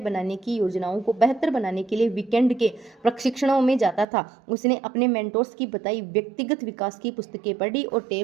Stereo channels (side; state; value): left; drops out; at 4.0 s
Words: की योजनाओं को बेहतर बनाने के लिए वीकेंड के प्रशिक्षणों में जाता था। उसने अपने मेंटोर्स की बताई व्यक्तिगत विकास की पुस्तकें पढ़ी और